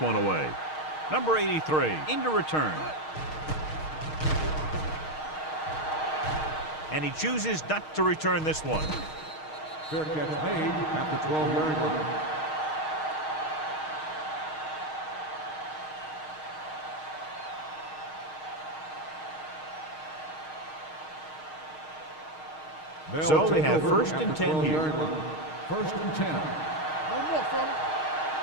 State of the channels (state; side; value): late; right; 6.4 ms